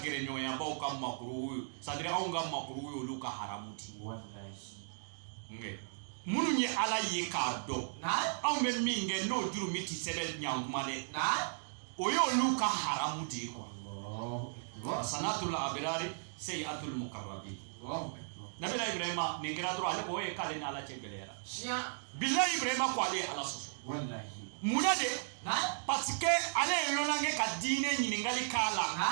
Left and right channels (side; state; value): left; silent; digital silence